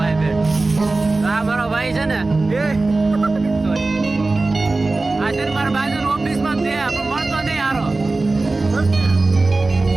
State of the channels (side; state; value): left; quieter; 3.3 dB